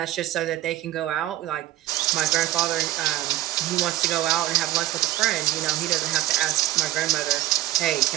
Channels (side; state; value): left; quieter; 14.8 dB